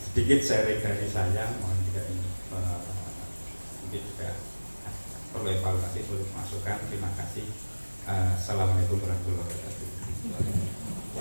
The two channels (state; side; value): inverted; both; correlation -1.00